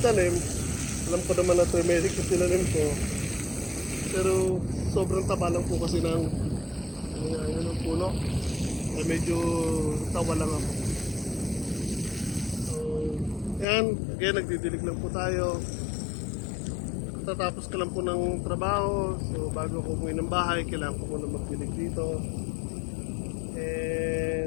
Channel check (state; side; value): drops out; right; at 13.7 s